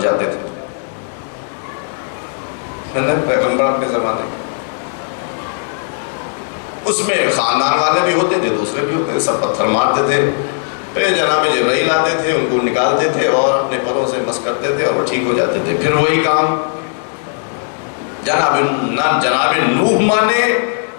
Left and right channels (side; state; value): right; silent; digital silence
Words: جاتے تھے۔ پیغمبر اپنے زمانے اس میں خاندان والے بھی ہوتے تھے، دوسرے بھی ہوتے تھے، سب پتھر مارتے تھے۔ پھر جناب جبرائیل آتے تھے، ان کو نکالتے تھے اور اپنے پروں سے مس کرتے تھے اور وہ ٹھیک ہو جاتے تھے۔ پھر وہی کام، نہ جناب نوح مانے